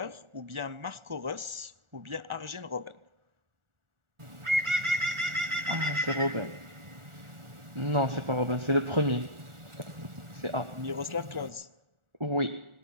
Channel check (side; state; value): left; late; 1.4 ms